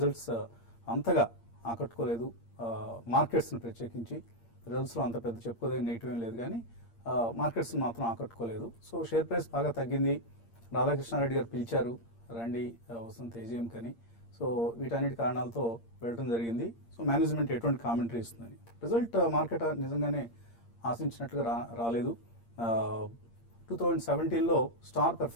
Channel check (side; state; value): right; late; 8.6 ms